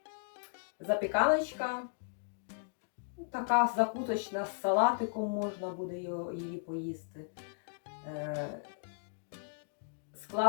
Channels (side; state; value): right; silent; digital silence